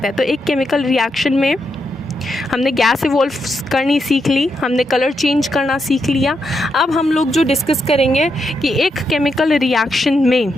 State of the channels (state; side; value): normal; both; correlation 0.82